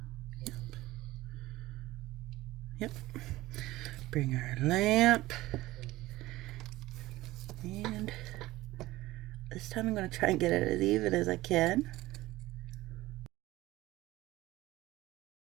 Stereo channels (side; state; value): left; quieter; 17.7 dB